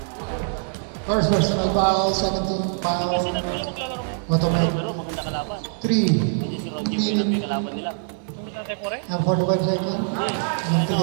First verse, may foul. 17 foul. Automate. 3. Minute. And 41 second. And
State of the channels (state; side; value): silent; left; digital silence